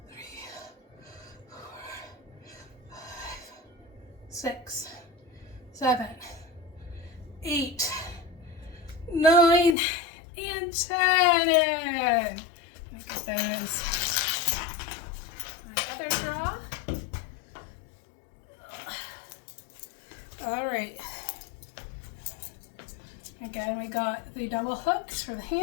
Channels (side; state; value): right; drops out; at 9.8 s